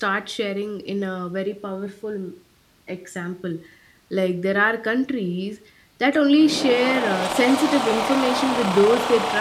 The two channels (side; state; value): both; identical; correlation 1.00